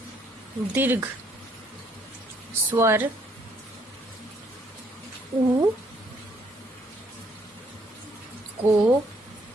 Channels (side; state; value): both; normal; correlation 0.67